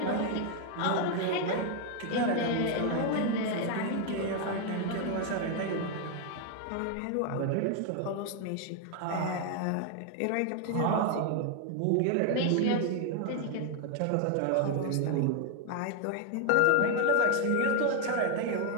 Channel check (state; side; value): different; both; correlation 0.01